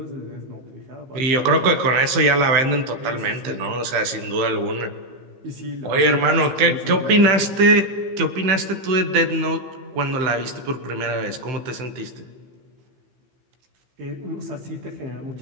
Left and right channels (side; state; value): left; late; 15 ms